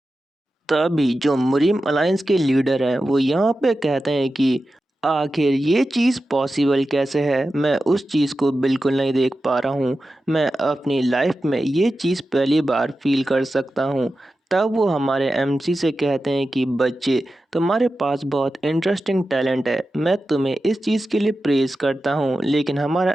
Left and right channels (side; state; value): both; normal; correlation 0.92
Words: तभी जो मुरिम अलायंस के लीडर हैं वो यहाँ पे कहते हैं कि आखिर ये चीज़ पॉसिबल कैसे है। मैं उस चीज़ को बिल्कुल नहीं देख पा रहा हूँ। मैं अपनी लाइफ में ये चीज़ पहली बार फील कर सकता हूँ। तब वो हमारे एमसी से कहते हैं कि बच्चे, तुम्हारे पास बहुत इंटरेस्टिंग टैलेंट है। मैं तुम्हें इस चीज़ के लिए प्रेज़ करता हूँ। लेकिन हमारा